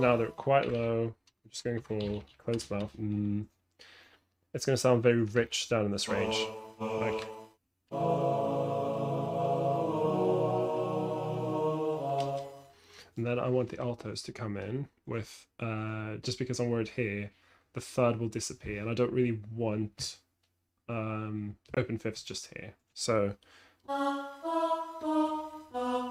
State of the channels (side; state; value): both; identical; correlation 1.00